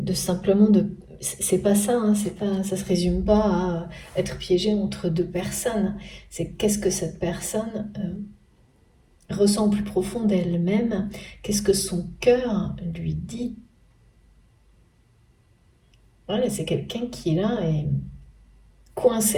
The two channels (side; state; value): both; identical; correlation 1.00